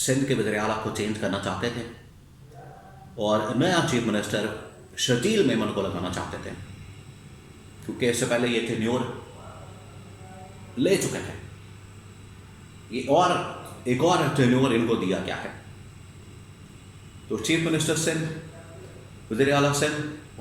के वज़ीर आला को चेंज करना चाहते थे और नया चीफ मिनिस्टर शजील मेमन को लगाना चाहते थे, क्योंकि इससे पहले ये टेन्योर ले चुके थे ये और एक और टेन्योर इनको दिया गया है। तो चीफ मिनिस्टर सिंध, वज़ीर आला सिंध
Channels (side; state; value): both; identical; correlation 1.00